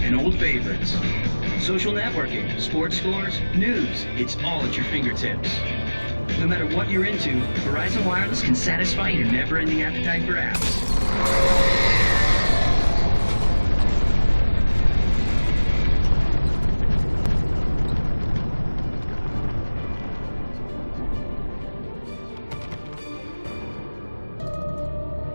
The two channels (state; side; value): inverted; both; correlation -1.00